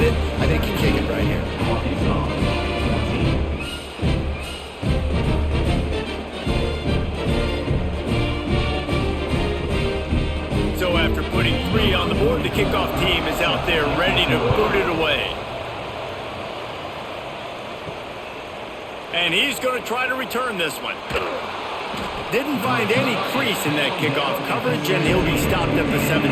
it. I think you kick it right here. So after putting 3 on the board, the kickoff team is out there ready to boot it away. And he's going to try to return this one. Didn't find any crease in that kickoff coverage, and he'll be stopped at the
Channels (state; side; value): identical; both; correlation 1.00